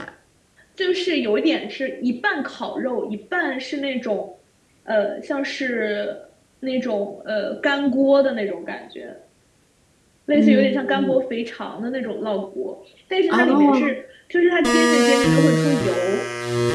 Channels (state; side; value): identical; both; correlation 1.00